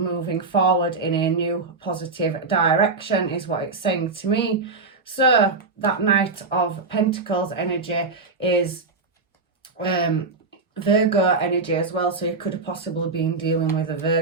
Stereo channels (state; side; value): quieter; left; 4.0 dB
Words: forward in a new positive direction, is what it's saying to me. So that Knight of Pentacles energy is Virgo energy as well, so you could have possibly been dealing with a